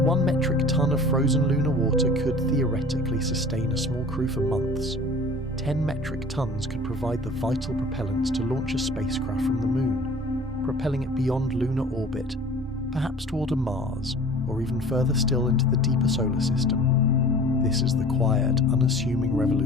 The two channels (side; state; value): both; normal; correlation 0.44